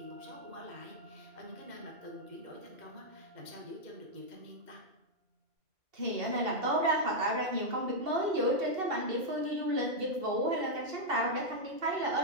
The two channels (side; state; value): left; late; 2.7 ms